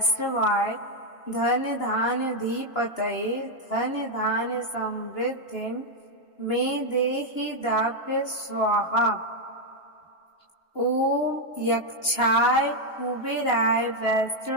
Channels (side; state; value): right; late; 2.9 ms